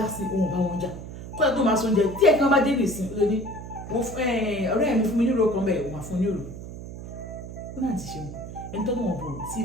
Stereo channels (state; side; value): noise; right; hum, 11 dB below the sound